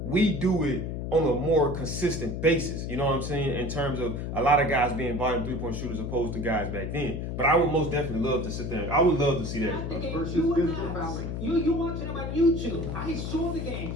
we do it on a more consistent basis. You know what I'm saying? In terms of a lot of guys being volume three-point shooters opposed to guys back then. But I would most definitely love to sit there. I would love to see that. Versus physical fouling. You watching them on YouTube. I saw the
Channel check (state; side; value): noise; left; hum, 4 dB below the sound